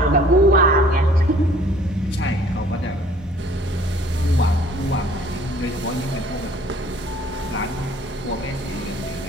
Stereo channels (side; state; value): both; normal; correlation 0.54